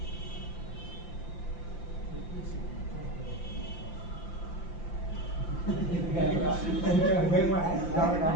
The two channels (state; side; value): late; right; 5.8 ms